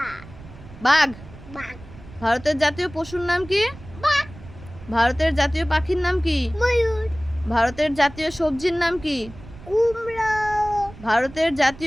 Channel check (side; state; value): right; noise; rumble, 18 dB below the sound